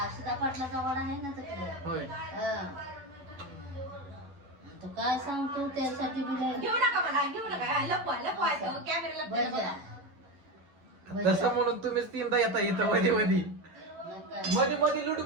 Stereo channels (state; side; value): late; left; 11 ms